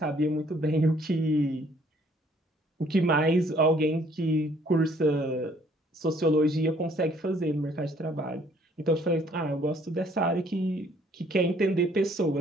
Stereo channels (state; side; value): normal; both; correlation 0.61